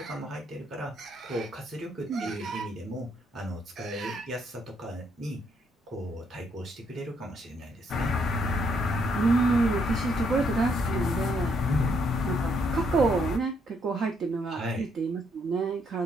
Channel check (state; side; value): normal; both; correlation 0.73